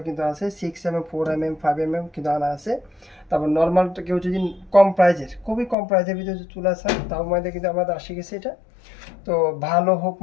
কিন্তু আছে 6mm, 4mm, 5mm কিন্তু আনা আছে। তারপর নর্মাল কেউ যদি খুবই কম প্রাইজের ভিতরে যদি চুলা চান তার মধ্যে কিন্তু আমাদের আসে গেছে এটা। তো ভালো হোক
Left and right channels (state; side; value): drops out; right; at 5.8 s